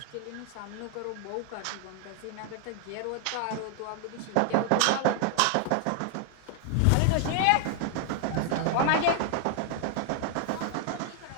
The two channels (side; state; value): both; different; correlation 0.00